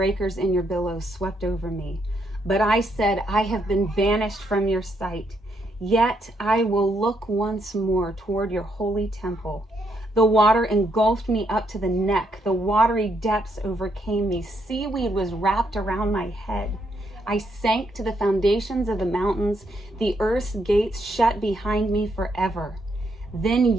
and your billows swept over me. But I said, I have been banished from your sight. Yet I will look once more toward your holy temple. The water engulfed me up to the neck. The watery depths overcame me. Seaweed was wrapped around my head. I sank to the foundations of the mountains. The earth's gates shut behind me forever. Then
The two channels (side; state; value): both; normal; correlation 0.76